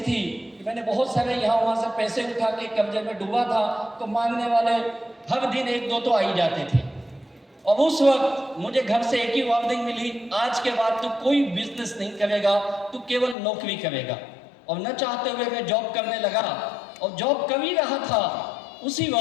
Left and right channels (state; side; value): drops out; right; at 13.4 s